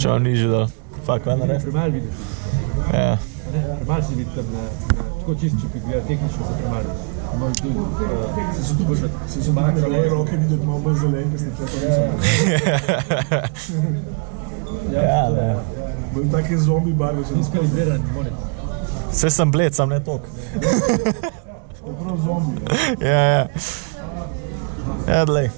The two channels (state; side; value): quieter; left; 37.1 dB